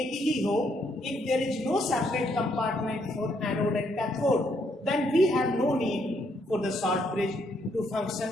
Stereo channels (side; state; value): both; normal; correlation 0.73